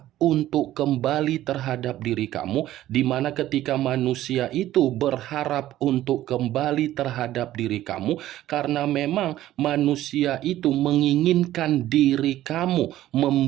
untuk kembali terhadap diri kamu, di mana ketika manusia itu berharap untuk kembali terhadap diri kamu, karena memang manusia itu menginginkan diri kamu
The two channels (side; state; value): left; quieter; 14.0 dB